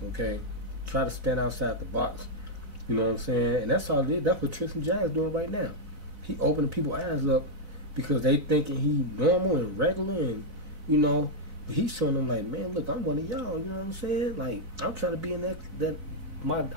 Okay, try to stand outside the box. You know what I'm saying? And that's all it is. That's what Tristan Jack's doing right now. He opening people's eyes up because they thinking he normal and regular, and you know, but he's showing them like, man, look, I'm one of y'all. You know what I'm saying? Like, I'm trying to be in I'm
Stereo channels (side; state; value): left; late; 4.0 ms